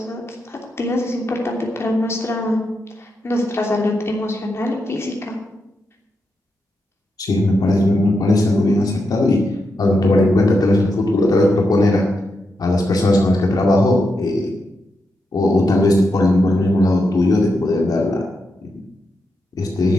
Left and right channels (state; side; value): normal; both; correlation 0.85